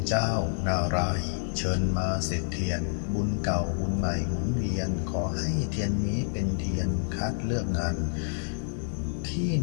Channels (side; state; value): right; silent; digital silence